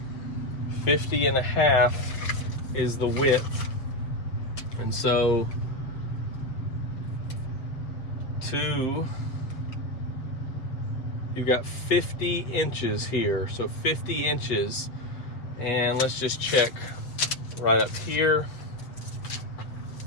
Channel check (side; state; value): right; late; 7.2 ms